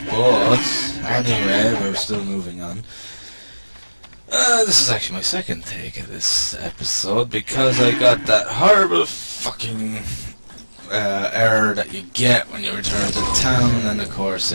but anyway, we're still moving on. This is actually my second take of this episode because I got that horrible fucking error that you get when you return to town, and of course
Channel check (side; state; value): both; inverted; correlation -1.00